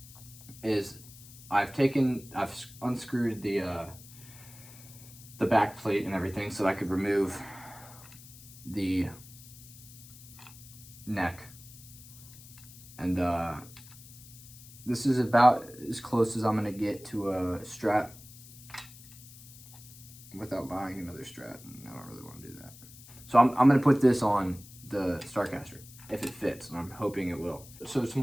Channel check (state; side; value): noise; left; hiss, 19 dB below the sound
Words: is I've unscrewed the back plate and everything so I could remove the neck. And this is about as close as I'm gonna get to a Strat without buying another Strat, and I don't really want to do that. So I'm gonna put this on the Starcaster if it fits, and I'm hoping it will. So